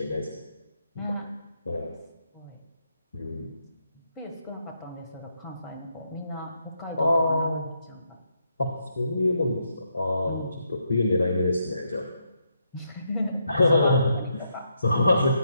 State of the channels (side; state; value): both; inverted; correlation -0.79